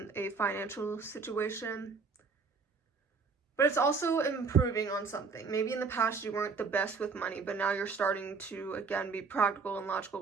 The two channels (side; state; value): left; quieter; 4.8 dB